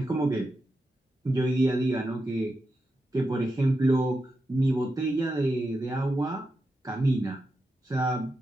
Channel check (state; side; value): normal; both; correlation 0.88